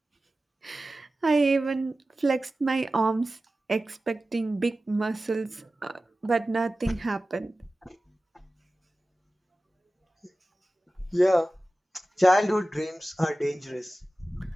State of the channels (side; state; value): both; normal; correlation 0.96